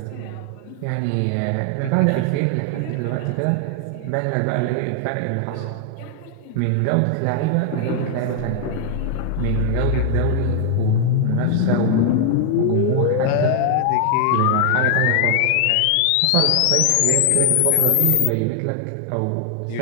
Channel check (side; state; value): both; different; correlation 0.00